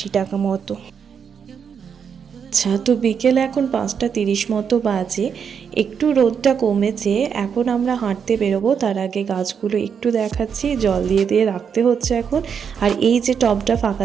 টাকা মতো। আচ্ছা, তো বিকেলে এখন 5:30 মতো বাজে, একটু রোদটা কমেছে। এখন আমরা হাঁটতে বেরোবো, তার আগে গাছগুলো একটু দেখাচ্ছি, জল দিয়ে রাখতে হচ্ছে এখন। আর এই যে টবটা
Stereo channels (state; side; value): quieter; left; 7.0 dB